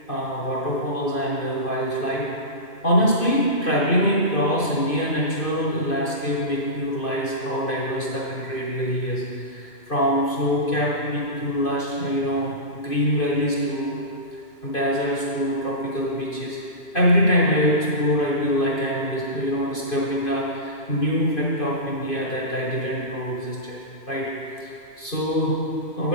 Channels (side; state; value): right; late; 2.5 ms